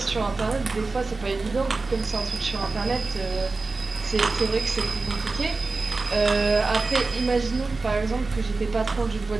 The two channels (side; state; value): left; quieter; 3.7 dB